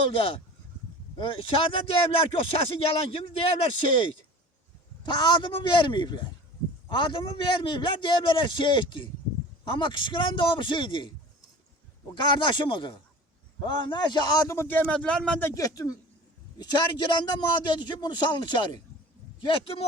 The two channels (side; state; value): both; normal; correlation 0.39